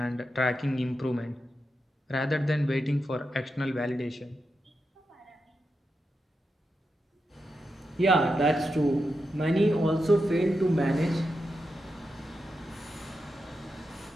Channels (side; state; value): both; normal; correlation 0.87